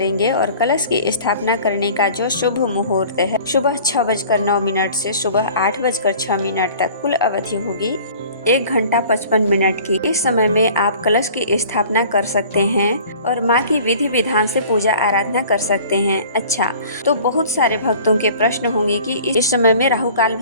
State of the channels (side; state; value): both; inverted; correlation -0.47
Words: और कलश की स्थापना करने का जो शुभ मुहूर्त है, सुबह 6:09 से सुबह 8:06 तक कुल अवधि होगी 1 घंटा 55 मिनट की। इस समय में आप कलश की स्थापना कर सकते हैं और माँ की विधि विधान से पूजा आराधना कर सकते हैं। अच्छा, तो बहुत सारे भक्तों के प्रश्न होंगे कि इस समय में राहु काल